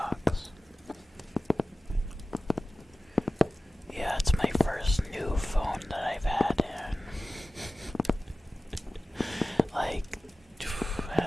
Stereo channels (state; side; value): normal; both; correlation 0.96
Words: Yeah, it's my first new phone that I've had in like